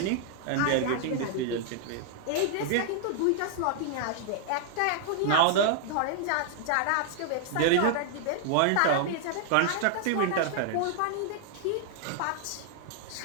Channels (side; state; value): both; different; correlation -0.01